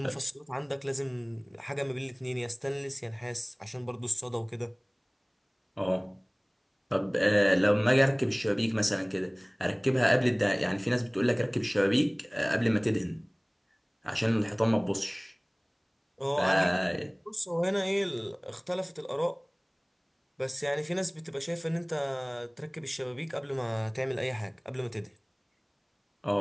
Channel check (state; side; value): identical; both; correlation 1.00